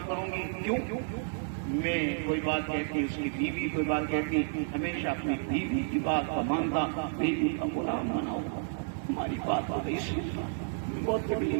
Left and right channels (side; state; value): left; silent; digital silence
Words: کروں گی، کیوں؟ میں کوئی بات کہتی، اس کی بیوی کوئی بات کہتی، ہمیشہ اپنی بیوی کی بات کا مانتا، بیوی کا غلام بنا ہوا، ہماری بات ہو گئی، بہت